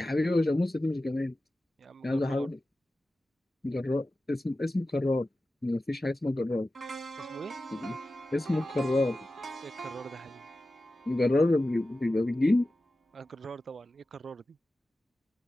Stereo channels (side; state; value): both; normal; correlation 0.94